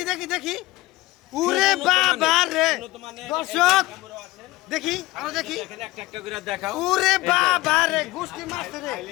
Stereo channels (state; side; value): quieter; right; 19.2 dB